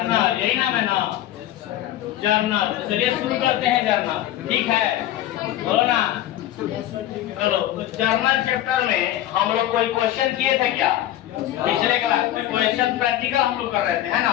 यही नाम है ना? जर्नल। चलिए शुरू करते हैं जर्नल। ठीक है, बोलो ना। चलो, तो जर्नल चैप्टर में हम लोग कोई क्वेश्चन किए थे क्या? पिछले क्लास में क्वेश्चन प्रैक्टिकल हम लोग कर रहे थे, है ना?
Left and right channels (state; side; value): quieter; right; 13.3 dB